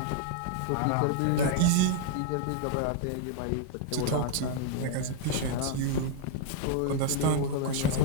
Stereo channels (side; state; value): both; different; correlation 0.00